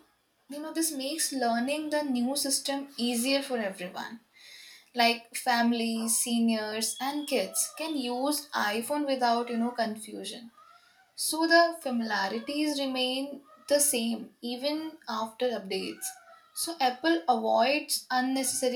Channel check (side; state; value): both; identical; correlation 1.00